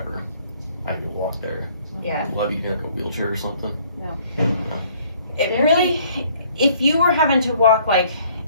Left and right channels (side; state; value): both; inverted; correlation -0.60